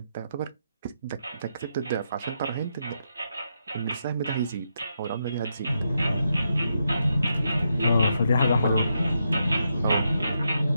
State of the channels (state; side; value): inverted; both; correlation -0.82